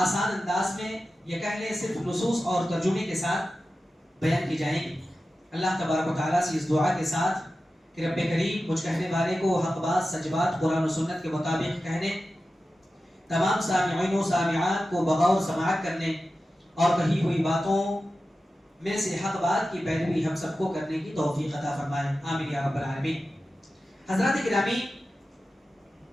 انداز میں، یہ کہہ لیں صرف نصوص اور ترجمے کے ساتھ بیان کی جائیں گی. اللہ تبارک و تعالیٰ سے اس دعا کے ساتھ کہ رب کریم مجھ کہنے والے کو حق بات سچ بات قرآن و سنت کے مطابق کہنے، تمام سامعین و سامعات کو بغور سماعت کرنے اور کہی ہوئی باتوں میں سے حق بات کی پیروی ہم سب کو کرنے کی توفیق عطا فرمائے. آمین یا رب العالمین. حضرات گرامی،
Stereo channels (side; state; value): both; normal; correlation 0.93